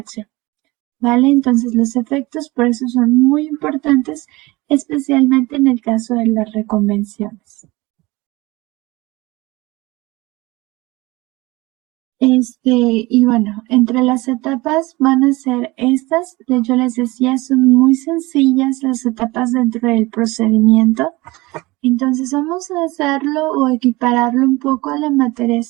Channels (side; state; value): left; quieter; 21.8 dB